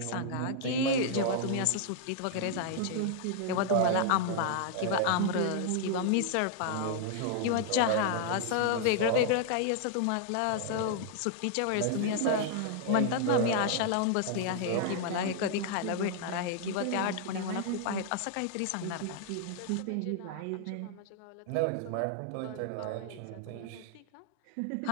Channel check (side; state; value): both; different; correlation 0.00